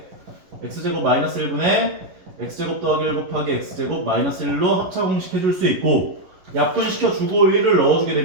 x제곱 마이너스 1분의 x제곱 더하기 1 곱하기 x제곱 마이너스 1로 합차 공식해줄 수 있고 약분시켜주고 1을 넣어주게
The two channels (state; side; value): late; left; 11 ms